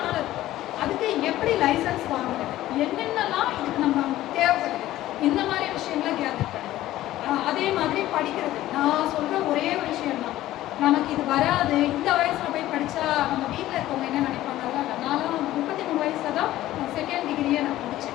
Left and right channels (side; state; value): right; quieter; 14.9 dB